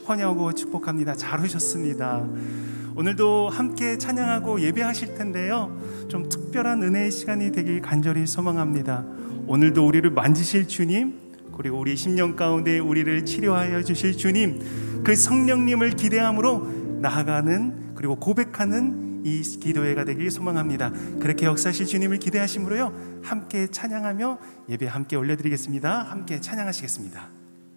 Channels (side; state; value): both; inverted; correlation -1.00